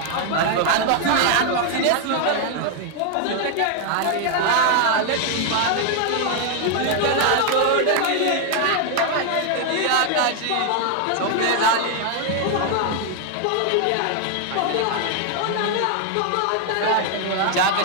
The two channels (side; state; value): both; different; correlation 0.00